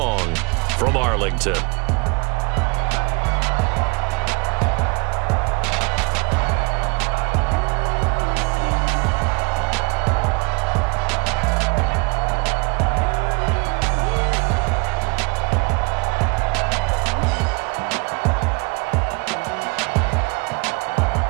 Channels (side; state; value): left; quieter; 29.4 dB